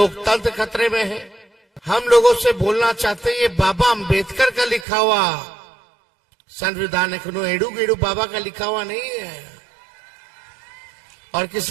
खतरे में है। हम लोगों से बोलना चाहते हैं, ये बाबा अंबेडकर का लिखा हुआ संविधान है, एडू गेडू बाबा का लिखा हुआ नहीं है। और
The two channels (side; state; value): left; drops out; at 4.9 s